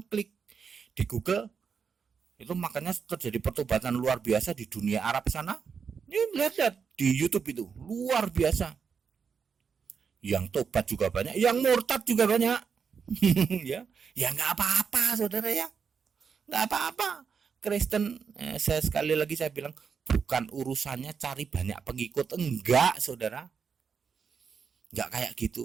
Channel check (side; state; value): left; quieter; 6.2 dB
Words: klik di Google itu, makanya terjadi pertobatan luar biasa di dunia Arab sana. Ini lihat di YouTube itu luar biasa. Yang tobat juga banyak, yang murtad juga banyak. ya nggak apa-apa saudara ya, nggak apa-apa. Kristen, sekali lagi saya bilang, bukan urusannya cari banyak pengikut, enggak saudara. Nggak kayak